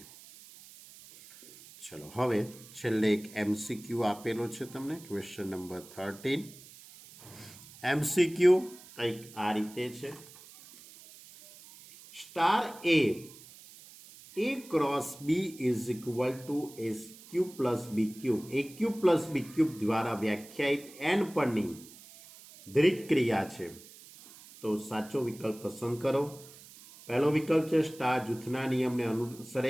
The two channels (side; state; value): right; noise; hiss, 20 dB below the sound